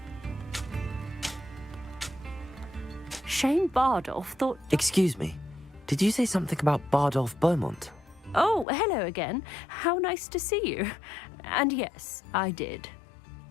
Shane Bardolph thought... Excuse me. Did you say something about Bardolph Beaumont? Oh, hello again. How nice to see you. And yes, I did.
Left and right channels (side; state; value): right; drops out; at 8.7 s